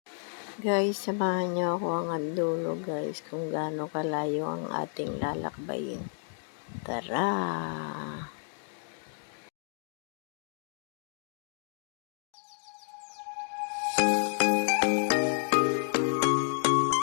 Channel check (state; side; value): silent; right; 57 dB below the other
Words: Guys, samahan niyo ako hanggang dulo guys kung gaano kalayo ang ating lalakbayin. Tara!